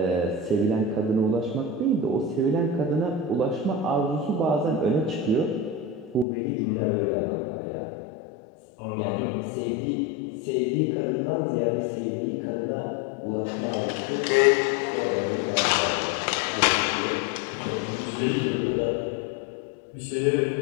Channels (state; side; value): drops out; right; at 6.2 s